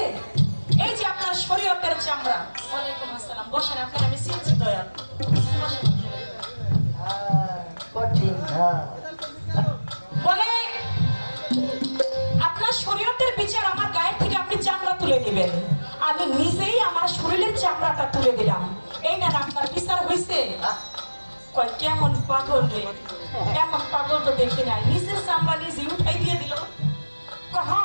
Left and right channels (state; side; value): inverted; both; correlation -1.00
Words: এই যে আপনার শরীয়তের চামড়া। ওয়ালাইকুম আসসালাম, বসেন, আপনার আমি চিনছি দয়াল। ঠিক না। বলে আপনার শরীয়তের বিচার আমার গায়ের থেকে আপনি চামড়া তুলে নেবেন, আমি নিজেই আমার শরীরের চামড়াটা তুলে দিলাম, এই না আপনার বিচার হয়েছে? কয় কেমন পাগল রে, এমন পাগল তো দেখি নাই, নিজের চামড়া নিজে উঠাই দিয়ে দিল। কয় হ্যাঁ